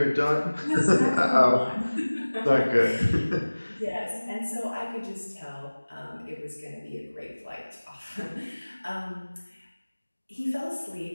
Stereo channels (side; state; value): both; inverted; correlation -1.00